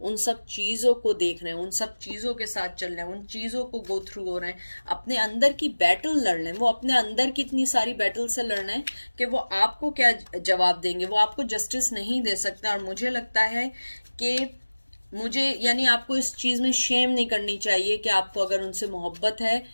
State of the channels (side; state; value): both; inverted; correlation -1.00